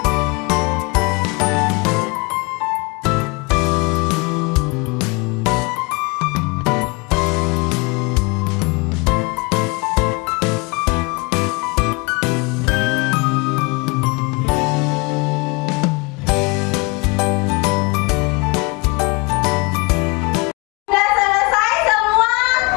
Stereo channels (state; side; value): quieter; right; 28.3 dB